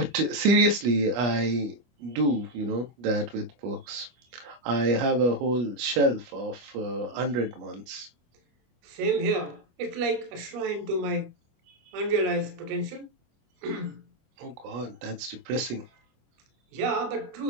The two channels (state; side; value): late; left; 25 ms